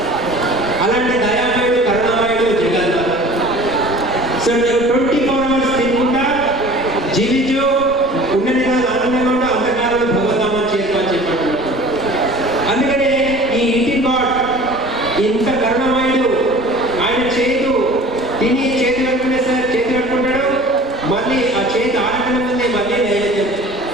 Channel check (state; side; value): normal; both; correlation 0.44